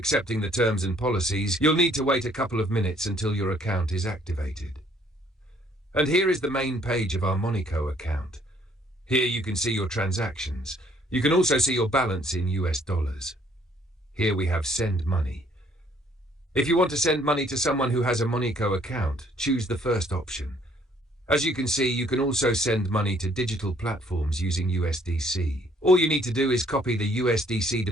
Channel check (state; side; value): normal; both; correlation 0.63